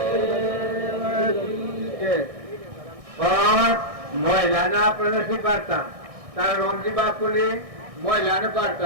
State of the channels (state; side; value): late; left; 1.6 ms